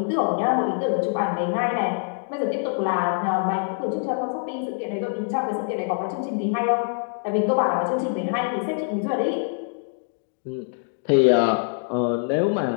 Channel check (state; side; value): silent; right; digital silence